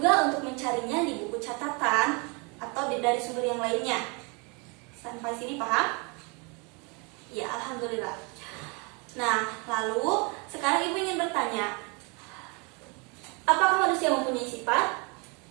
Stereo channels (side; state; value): left; quieter; 31.6 dB